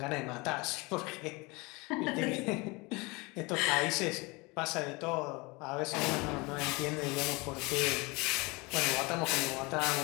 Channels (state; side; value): quieter; right; 26.1 dB